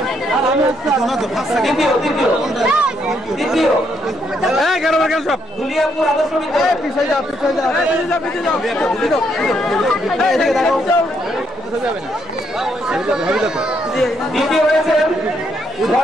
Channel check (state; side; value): normal; both; correlation 0.74